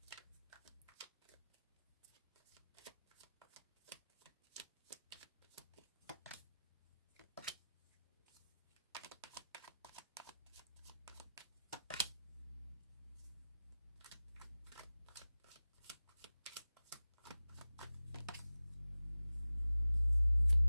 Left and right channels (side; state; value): both; inverted; correlation -0.96